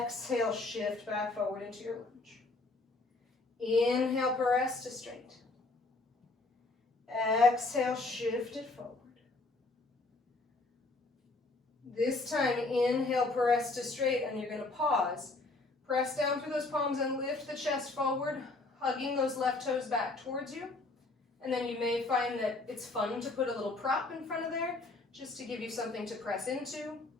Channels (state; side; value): quieter; right; 3.2 dB